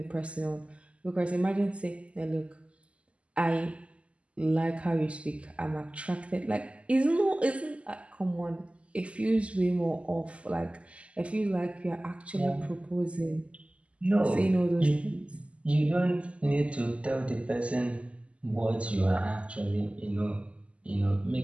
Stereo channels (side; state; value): left; late; 0.059 ms